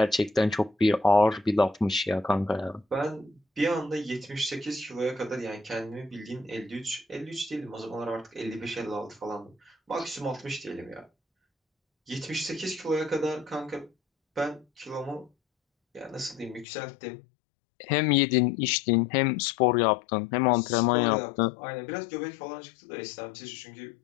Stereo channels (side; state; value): right; drops out; at 16.7 s